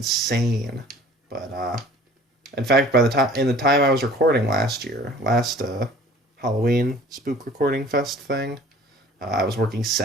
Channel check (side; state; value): both; normal; correlation 0.49